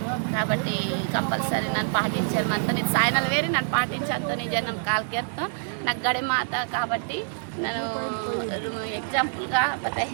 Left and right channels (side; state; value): left; silent; 61 dB below the other